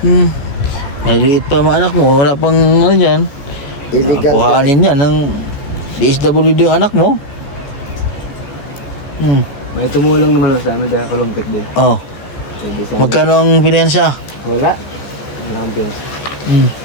maliliit pa mga anak mo, wala pang dyan. Illegal. Kuhaanin yan ng DSWD yung anak mo. May tumulong naman sa amin dahil kulumpit din. Pwede sa Magkano ang pinensya? Wala. Walang piyas.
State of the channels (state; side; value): late; right; 14 ms